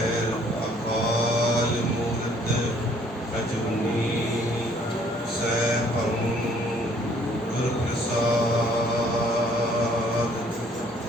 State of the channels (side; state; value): both; normal; correlation 0.61